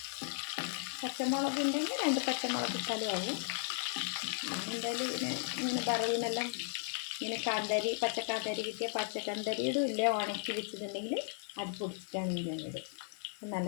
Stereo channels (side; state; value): right; silent; 54 dB below the other